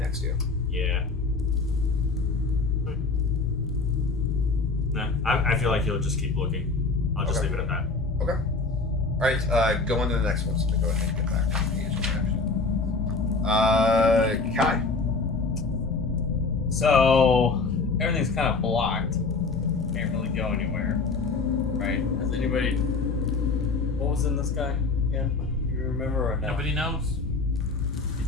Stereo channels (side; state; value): right; quieter; 3.9 dB